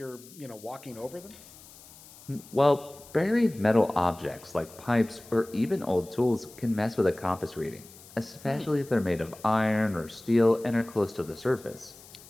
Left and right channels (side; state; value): left; noise; hiss, 21 dB below the sound